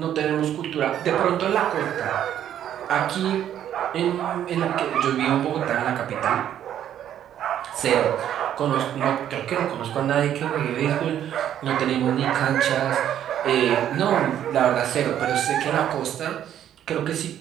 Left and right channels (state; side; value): quieter; left; 10.6 dB